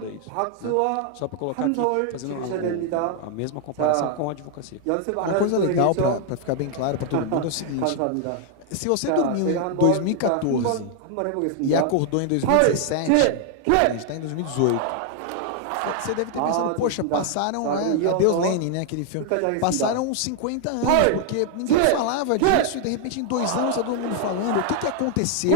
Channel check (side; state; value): both; different; correlation 0.00